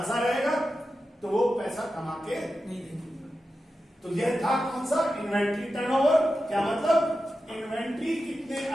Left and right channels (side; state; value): both; normal; correlation 0.91